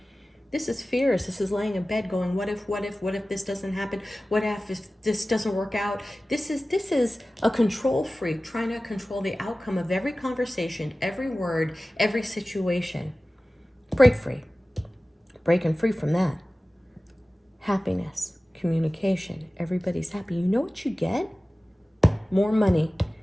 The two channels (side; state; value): both; normal; correlation 0.97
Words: This is fears. This is laying in bed going, what if this doesn't happen? What if this doesn't work out? This is a control freak trying to control the outcome of every conversation, every word, every situation. Break free. Breaking free from that. Happiness, communication, everybody's happy. You know what you get? More money